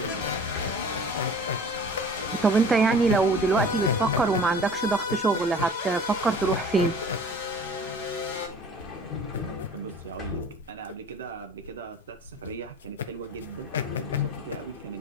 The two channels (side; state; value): both; normal; correlation 0.44